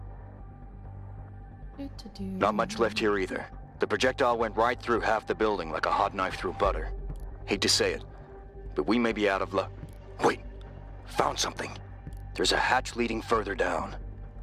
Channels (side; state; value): both; identical; correlation 1.00